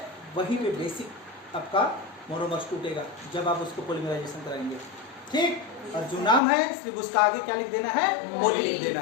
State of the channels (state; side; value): drops out; right; at 6.4 s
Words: वहीं पे बेसिक आपका मोनोमर्स टूटेगा जब आप उसको पॉलीमराइजेशन कराएंगे, ठीक? और जो नाम है सिर्फ उसका आगे क्या लिख देना है? पॉली लिख देना